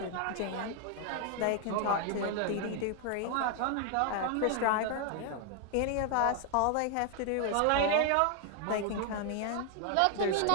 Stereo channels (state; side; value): different; both; correlation 0.00